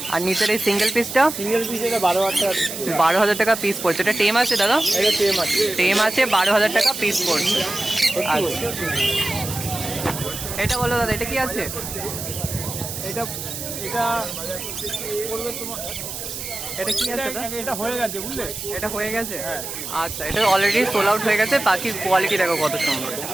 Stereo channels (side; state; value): right; noise; hiss, 7 dB below the sound